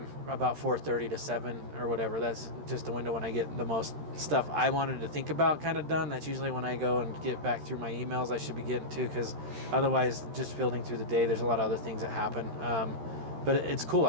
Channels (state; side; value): late; left; 13 ms